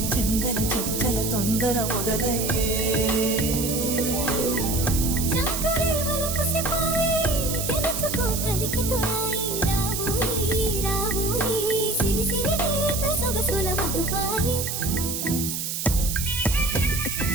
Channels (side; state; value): right; noise; hiss, 3 dB below the sound